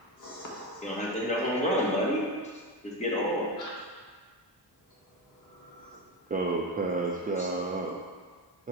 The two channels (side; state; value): both; normal; correlation 0.17